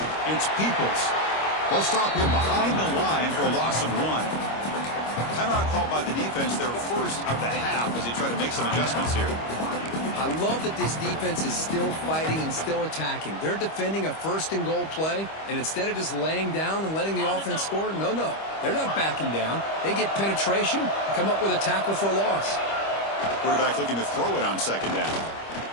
it's Peoples. They'll stop him behind the line for a loss of 1. Timeout called by the defense, their 1st of the half, as they try to make some adjustments here. I love that this defense is still fighting and still attacking. They're defending a 1st and goal play, and instead of just laying down and letting the offense score, no. They're not backing down. They get penetration, come up with a tackle for a loss. Quarterback looking to throw it on 2nd down.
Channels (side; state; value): right; late; 25 ms